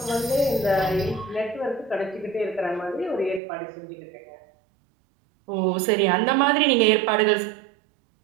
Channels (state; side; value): drops out; left; at 3.4 s